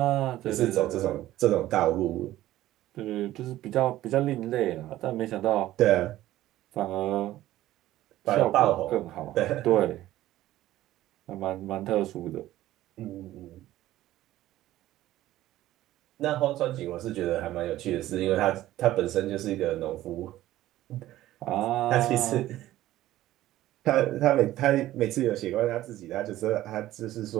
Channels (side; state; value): left; quieter; 14.8 dB